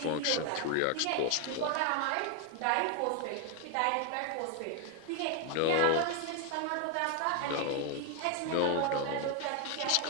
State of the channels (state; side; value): different; both; correlation 0.01